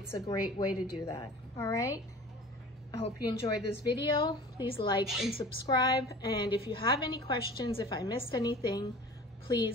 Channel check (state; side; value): normal; both; correlation 0.41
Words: a great way to do that. All right. I hope you enjoyed this video. Please like and subscribe. And if you have any questions, if I missed anything,